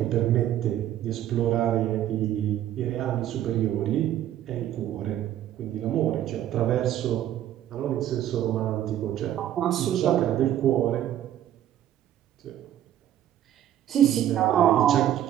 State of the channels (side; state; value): left; quieter; 11.8 dB